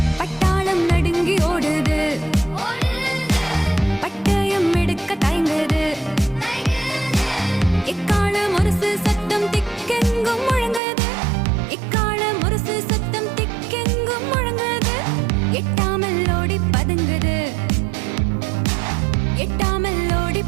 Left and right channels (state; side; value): drops out; left; at 10.8 s